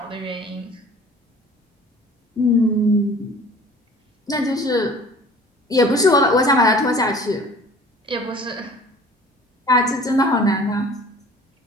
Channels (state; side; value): normal; both; correlation 0.48